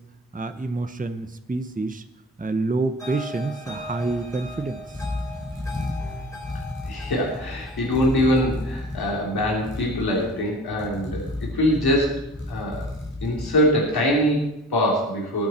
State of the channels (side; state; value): both; normal; correlation 0.39